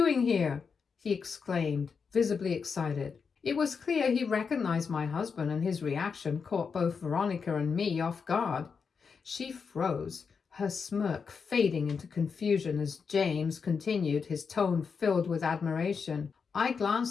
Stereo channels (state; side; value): quieter; right; 5.7 dB